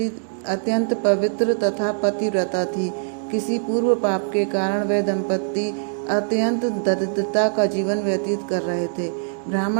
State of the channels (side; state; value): left; silent; 64 dB below the other